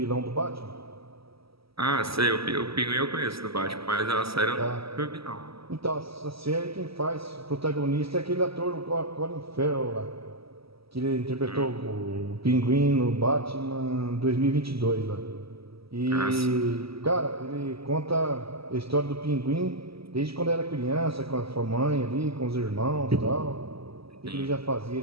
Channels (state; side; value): late; left; 0.76 ms